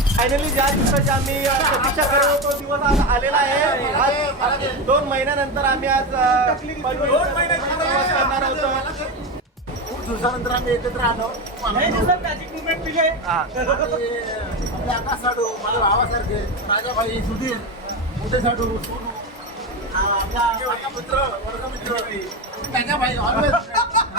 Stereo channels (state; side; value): normal; both; correlation 0.18